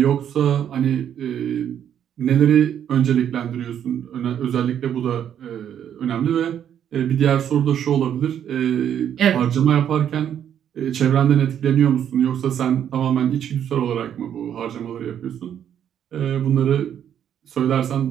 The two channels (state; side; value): quieter; left; 9.5 dB